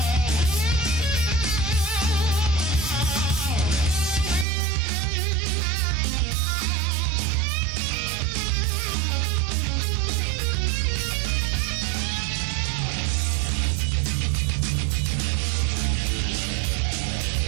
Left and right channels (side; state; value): left; drops out; at 4.5 s